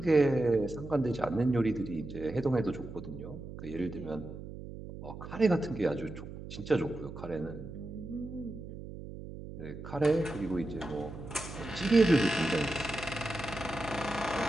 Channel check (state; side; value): noise; right; hum, 11 dB below the sound